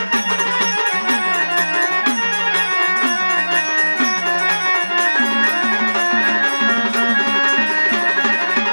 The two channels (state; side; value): inverted; both; correlation -1.00